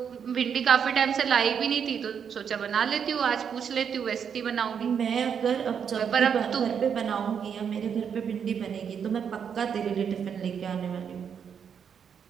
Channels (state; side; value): quieter; left; 7.4 dB